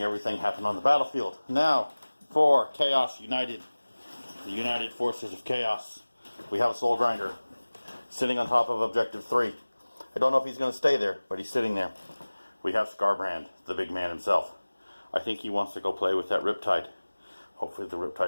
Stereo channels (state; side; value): inverted; both; correlation -1.00